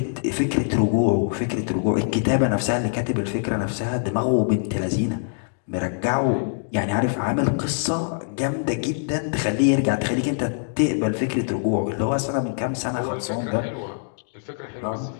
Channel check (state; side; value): silent; right; digital silence